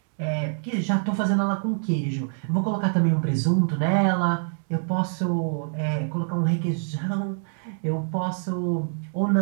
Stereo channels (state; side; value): silent; left; digital silence